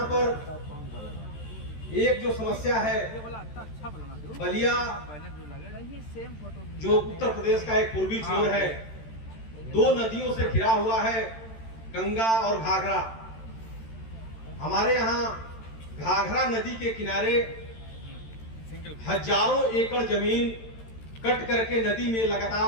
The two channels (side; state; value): right; late; 13 ms